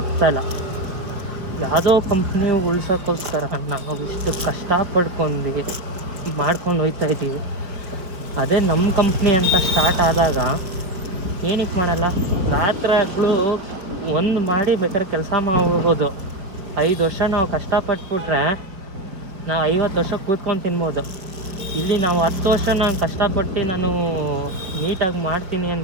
ಯಾವುದೋ ಕಂಪ್ನಿ ಉಳ್ಸೋಕ್ಕೋಸ್ಕರ ನಾವು ಇಷ್ಟು ಕಷ್ಟಪಡ್ಕೊಂಡು ಮಾಡ್ಕೊಂಡು ಹೋಗ್ತಾಯಿದ್ದೀವಿ. ಅದೇ ನಮ್ಮ ಕಂಪ್ನಿ ಅಂತ ಸ್ಟಾರ್ಟ್ ಆದಾಗ ಏನಕ್ಕೆ ಮಾಡಲ್ಲ, ರಾತ್ರಿ ಹಗಲು ಒಂದು ಮಾಡಿ ಬೇಕಾದ್ರೆ ಕೆಲಸ ಮಾಡ್ಬೋದು. 5 ವರ್ಷ ನಾವು ಕಷ್ಟಪಟ್ಬಿಟ್ರೆ ನಾವು 50 ವರ್ಷ ಕೂತ್ಕೊಂಡು ತಿನ್ಬೋದು. ಇಲ್ಲಿ ನಾವು 10 ವರ್ಷ ನಾನು ಕಷ್ಟಪಟ್ಟು ನಾನು ನೀಟಾಗಿ ಮಾಡ್ತೀನಿ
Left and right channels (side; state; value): left; late; 5.2 ms